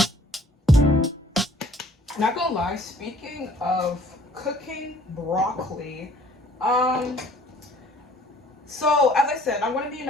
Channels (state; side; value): normal; both; correlation 0.55